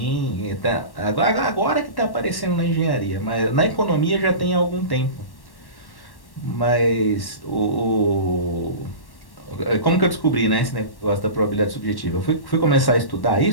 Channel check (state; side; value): late; right; 1.1 ms